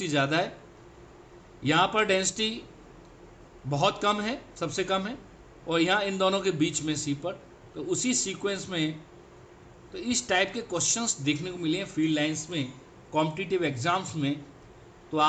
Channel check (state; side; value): identical; both; correlation 1.00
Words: ज़्यादा है, यहाँ पर डेंसिटी बहुत कम है, सबसे कम है, और यहाँ इन दोनों के बीच में सी पर। तो उसी सीक्वेंस में तो इस टाइप के क्वेश्चंस देखने को मिले हैं फील्ड लाइंस में, कॉम्पिटिटिव एग्जाम्स में। तो